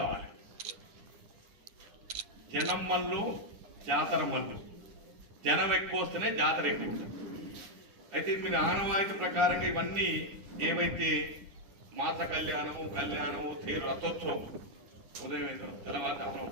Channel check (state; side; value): late; left; 9.9 ms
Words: జనం మల్లు జాతర మల్లు. జనం ఎక్కువ వస్తేనే జాతర ఎక్కువ. అయితే మీరు ఆనవాయితీ ప్రకారంగా ఇవన్నీ ఏవైతే మాత కళ్యాణము తీరు రథోత్సవం ఉదయం తెల్లవారుజామున